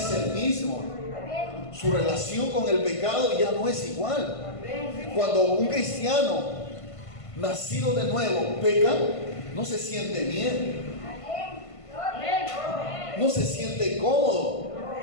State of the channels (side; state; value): right; late; 1.5 ms